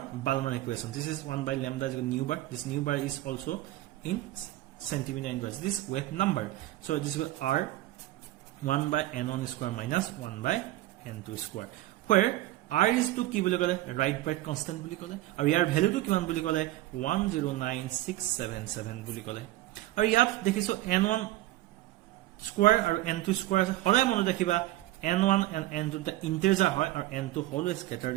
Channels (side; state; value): left; quieter; 16.1 dB